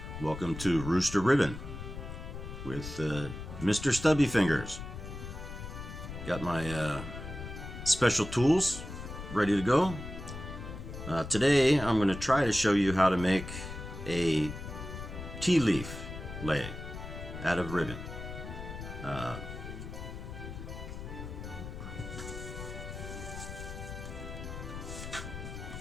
Welcome to Rooster Ribbon with Mr. Stubby Fingers. Got my special tools ready to go. Today I'm going to try to show you how to make a Ti-leaf Lei out of ribbon.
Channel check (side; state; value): left; noise; rumble, 9 dB below the sound